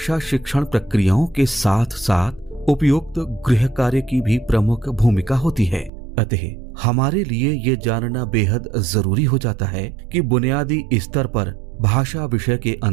शिक्षण प्रक्रियाओं के साथ साथ उपयुक्त गृह कार्य की भी प्रमुख भूमिका होती है। अतः हमारे लिए ये जानना बेहद जरूरी हो जाता है कि बुनियादी स्तर पर भाषा विषय के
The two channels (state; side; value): drops out; left; at 5.9 s